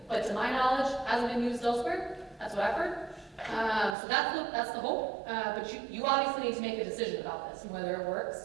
but to my knowledge, hasn't been used elsewhere. That's what I've heard. So that's the hope. But you obviously need to make a decision about this and whether it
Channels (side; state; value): left; drops out; at 4.0 s